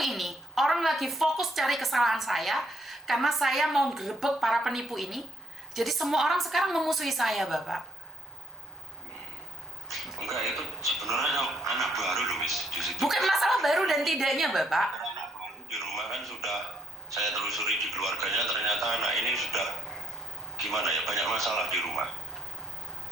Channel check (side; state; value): both; normal; correlation 0.67